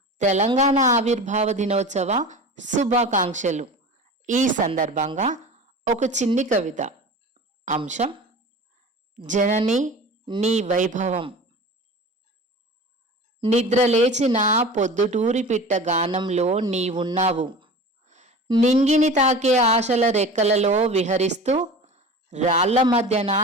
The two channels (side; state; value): both; normal; correlation 0.35